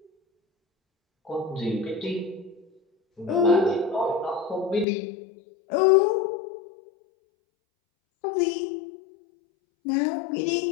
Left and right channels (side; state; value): right; drops out; at 4.9 s